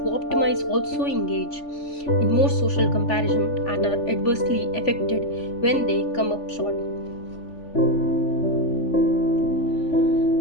optimize also engage in more social comparison and are adversely affected when they come up short.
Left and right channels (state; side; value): late; right; 3.4 ms